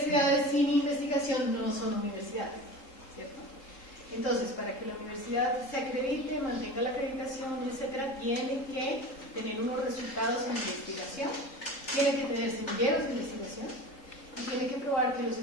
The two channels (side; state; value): right; late; 3.8 ms